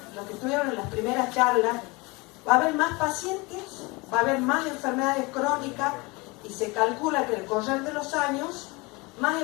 los que estuvieron en las primeras charlas, va a haber más pacientes, va a haber más enfermedades crónicas y se calcula que al correr de los años, más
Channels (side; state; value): right; quieter; 25.7 dB